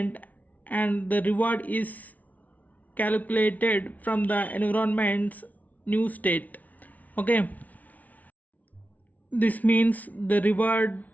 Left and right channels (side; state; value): right; late; 0.074 ms